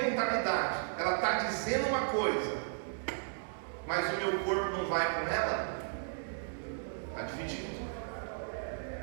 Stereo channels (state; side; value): silent; left; digital silence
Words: ela está dizendo uma coisa, mas o meu corpo não vai com ela, está dividido.